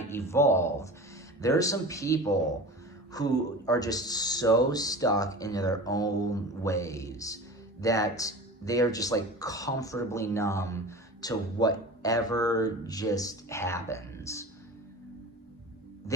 evolved. There are some people who are just so stuck into their own ways that they are just like comfortably numb to whatever just happens.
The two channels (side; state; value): both; normal; correlation 0.34